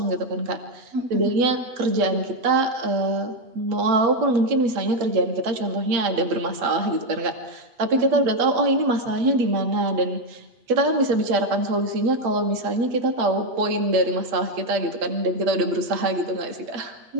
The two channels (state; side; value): late; left; 8.2 ms